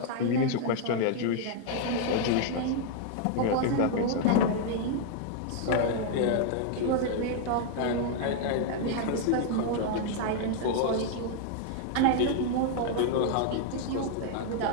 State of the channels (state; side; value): different; both; correlation 0.00